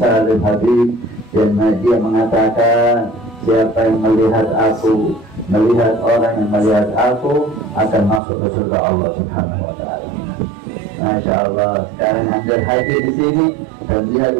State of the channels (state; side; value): drops out; left; at 8.2 s